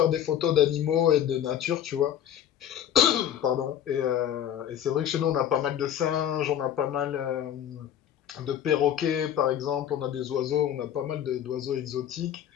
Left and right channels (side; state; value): right; quieter; 10.3 dB